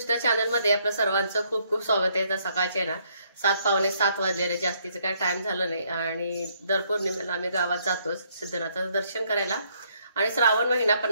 channel मध्ये आपल्या सर्वांचं खूप खूप स्वागत आहे। तर सकाळचे ना 7:15 वाजलेले, जास्तीचं काय टाइम झालं नाही आणि दर पौर्णिमेला आम्ही गावात जातोच सिद्धनाथाचं दर्शन करायला। आणि श्रावण महिना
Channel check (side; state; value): both; inverted; correlation -0.69